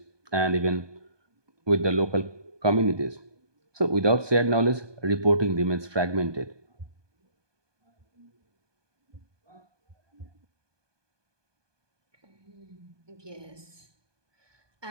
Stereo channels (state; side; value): late; left; 1.2 ms